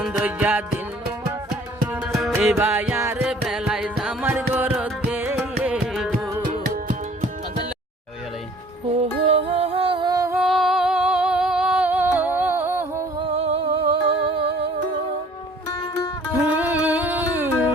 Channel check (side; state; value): both; normal; correlation 0.53